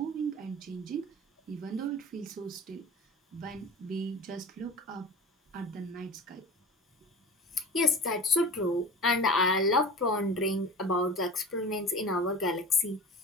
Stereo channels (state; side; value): normal; both; correlation 0.35